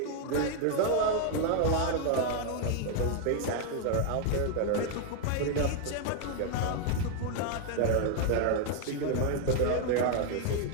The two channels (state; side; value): different; both; correlation 0.00